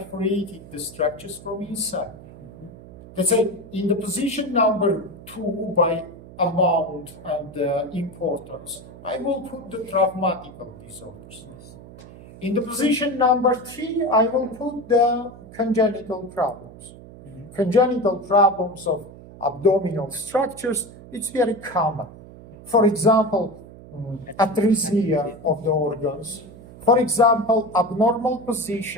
the structures from inside. Let's say in the position number 2 by amount and importance, I will put the traumatical disorders. In the position number 3, I will put the congenital problems. Congenital problems of abdominal structures, it's very common. For example, atresia of the organs. For example, abnormal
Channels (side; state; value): right; noise; hum, 18 dB below the sound